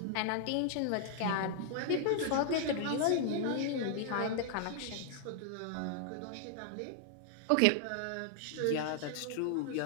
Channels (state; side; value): different; both; correlation 0.00